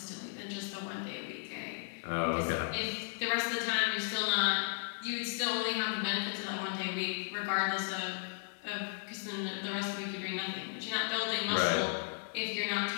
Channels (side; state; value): right; silent; digital silence